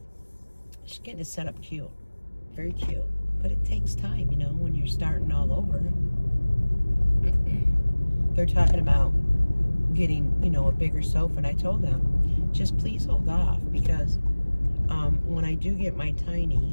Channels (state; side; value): inverted; both; correlation -1.00